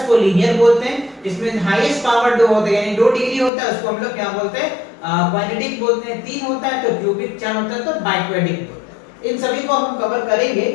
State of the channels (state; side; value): drops out; right; at 3.5 s